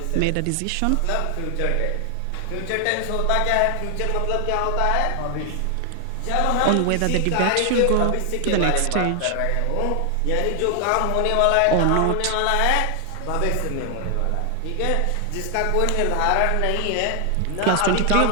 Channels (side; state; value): both; different; correlation 0.00